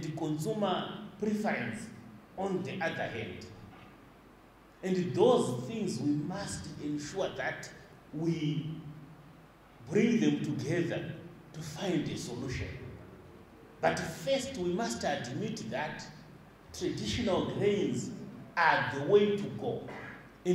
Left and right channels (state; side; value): identical; both; correlation 1.00